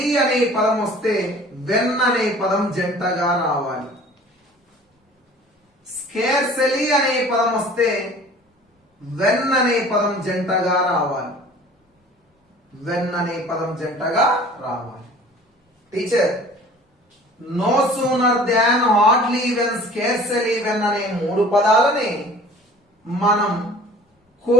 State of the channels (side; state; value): both; normal; correlation 0.47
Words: వెన్ అనే పదం జంటగా రావాలి. స్కేర్సెలీ అనే పదం వస్తే వెన్ అనే పదం జంటగా రావాలి. Teacher no sooner than, hardly, when, scarcely, when అనే మూడు పదాలని మనం